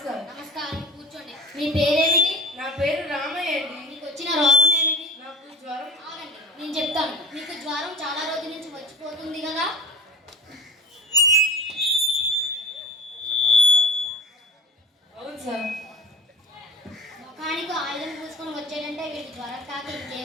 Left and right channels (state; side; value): normal; both; correlation 0.35